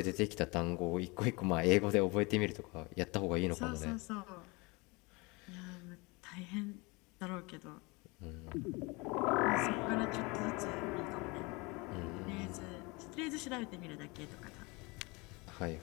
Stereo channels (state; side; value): quieter; right; 26.4 dB